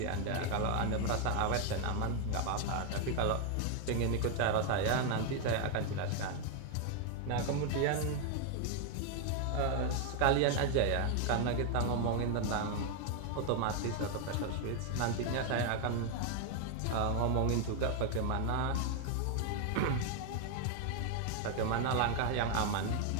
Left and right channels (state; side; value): different; both; correlation 0.00